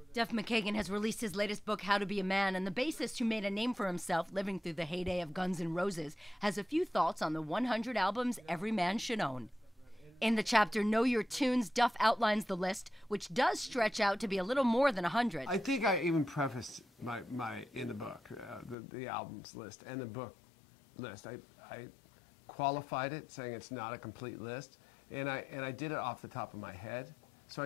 Duff McKagan has released his latest book, How to Be a Man, and the bassist who made a name for himself living through the heyday of Guns N' Roses has a few thoughts on the 100 albums every man should own. In the chapter Know Your Tunes, Duff outlines the list, which does stretch out to be a little more than 100. I think I even prefaced my in the book, the albums list and the book list. I qualified it, saying it's not a complete list. And I did it off the top of my head. So I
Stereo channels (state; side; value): drops out; right; at 18.8 s